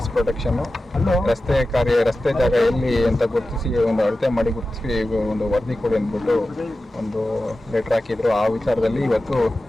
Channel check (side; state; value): both; normal; correlation 0.94